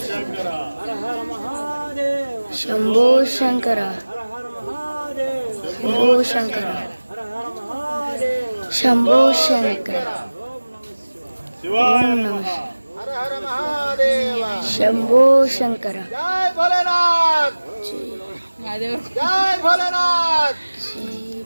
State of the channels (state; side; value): inverted; both; correlation -1.00